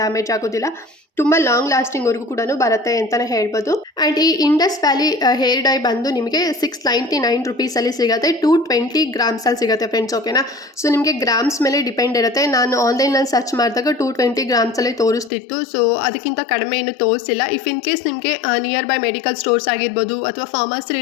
ಆಗೋದಿಲ್ಲ, ತುಂಬ ಲಾಂಗ್ ಲಾಸ್ಟಿಂಗ್ವರೆಗೂ ಕೂಡ ಬರುತ್ತೆ ಅಂತಲೇ ಹೇಳ್ಬೋದು. ಆ್ಯಂಡ್ ಈ ಇಂಡಸ್ ವ್ಯಾಲಿ ಹೇರ್ ಡೈ ಬಂದು ನಿಮಗೆ 699 ರುಪೀಸಲ್ಲಿ ಸಿಗುತ್ತೆ, 220 ಗ್ರಾಮ್ಸಲ್ಲಿ ಸಿಗುತ್ತೆ ಫ್ರೆಂಡ್ಸ್ ಓಕೆನಾ. ಸೊ ನಿಮಗೆ ಗ್ರಾಮ್ಸ್ ಮೇಲೆ ಡಿಪೆಂಡ್ ಇರುತ್ತೆ. ನಾನು ಆನ್ಲೈನಲ್ಲಿ ಸರ್ಚ್ ಮಾಡಿದಾಗ 220 ಗ್ರಾಮ್ಸಲ್ಲಿ ತೋರಿಸ್ತಿತ್ತು, ಸೊ ಅದಕ್ಕಿಂತ ಕಡಿಮೆ ಏನು ತೋರಿಸಿಲ್ಲ. ಇಫ್ ಇನ್ ಕೇಸ್ ನಿಮಗೆ ನಿಯರ್ ಬೈ ಮೆಡಿಕಲ್ ಸ್ಟೋರ್ಸ್ ಆಗಿರ್ಬೋದು ಅಥವಾ ಫಾರ್ಮಸಿ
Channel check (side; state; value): right; drops out; at 15.3 s